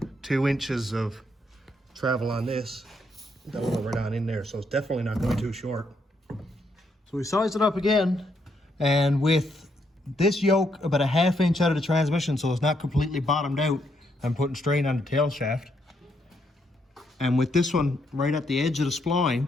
2 inches of travel on this. That'll go right on in there, so it's definitely not going too short. So we sized it up again, and with this yoke about a ½ inch out of the transmission so it's not completely bottomed out, I'm putting strain on the tail shaft. And with this one right at the edge of the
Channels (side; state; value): both; normal; correlation 0.76